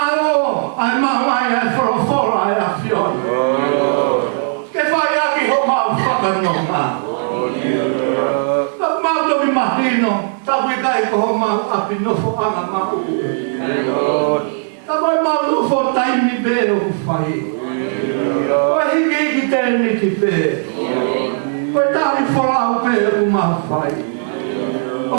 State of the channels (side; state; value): left; silent; digital silence